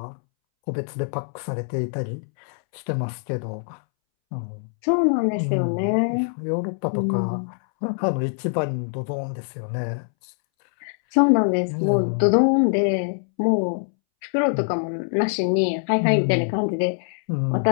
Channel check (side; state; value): right; silent; 63 dB below the other